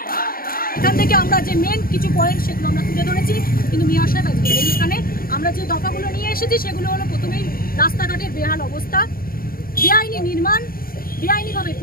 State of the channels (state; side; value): late; right; 0.42 ms